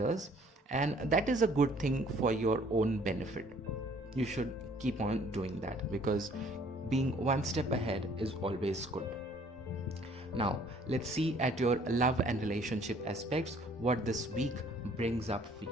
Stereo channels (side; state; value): both; normal; correlation 0.58